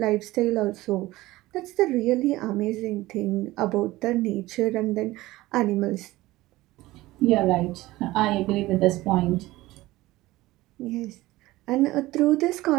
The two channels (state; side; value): quieter; left; 18.2 dB